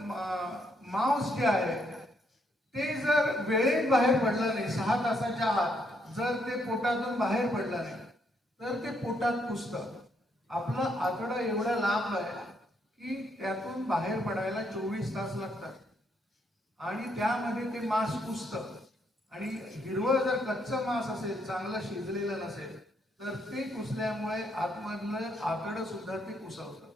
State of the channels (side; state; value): both; normal; correlation 0.74